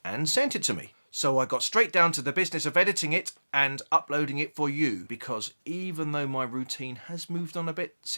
and sent it to me. So I got straight down to the business of editing it and uploading it for you, because even though my routine has moved on a bit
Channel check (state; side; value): inverted; both; correlation -1.00